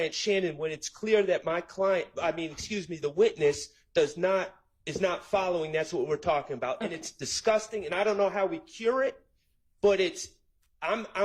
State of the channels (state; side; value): identical; both; correlation 1.00